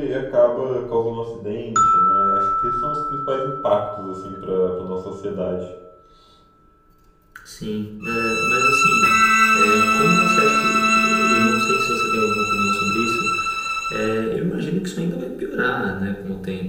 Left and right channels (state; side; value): identical; both; correlation 1.00